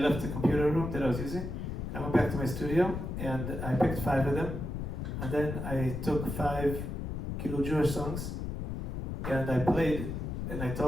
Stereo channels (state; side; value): noise; left; rumble, 4 dB below the sound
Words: the computer room that I was using. I went back to my studio, and I picked 5 of them, and then I took 5 Jewish songs, and I played, and I